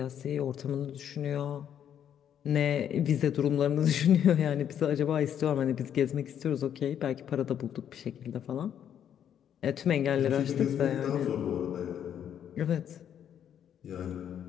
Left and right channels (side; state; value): right; quieter; 9.4 dB